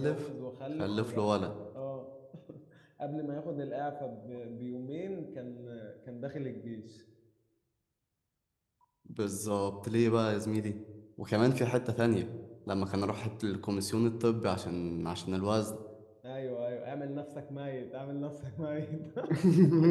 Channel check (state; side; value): identical; both; correlation 1.00